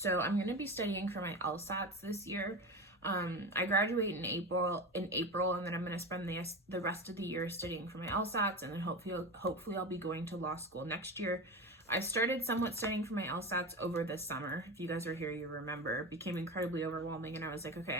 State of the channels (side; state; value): both; normal; correlation 0.24